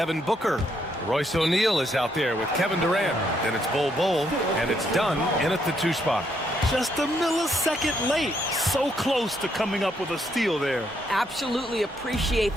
Booker. Royce O'Neal is out there with Kevin Durant. Then it's Bol Bol, and it's Dunn in at the 2 spot. Just a millisecond late. So close to coming up with a steal there. Absolutely appreciate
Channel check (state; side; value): normal; both; correlation 0.74